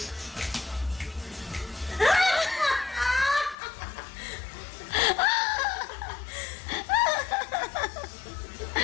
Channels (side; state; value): right; drops out; at 3.6 s